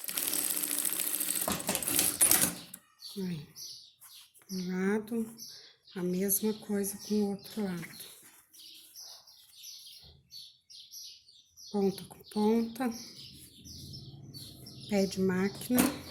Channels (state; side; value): identical; both; correlation 1.00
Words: Aí, um lado, a mesma coisa com o outro lado. Ponta com ponta. Pé de máquina.